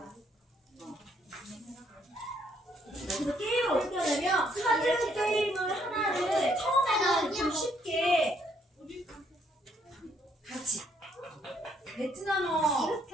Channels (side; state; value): both; normal; correlation 0.69